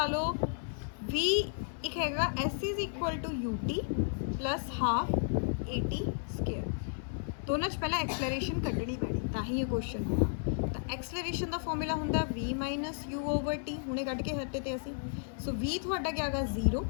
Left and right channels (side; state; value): right; silent; 56 dB below the other